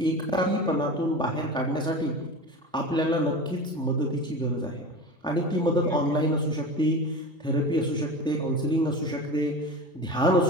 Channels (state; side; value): normal; both; correlation 0.30